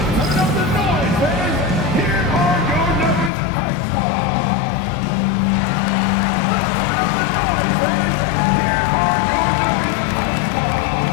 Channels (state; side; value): drops out; right; at 3.3 s